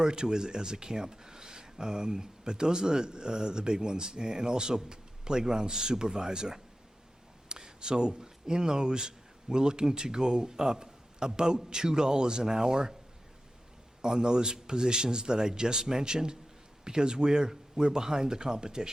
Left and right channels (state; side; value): normal; both; correlation 0.93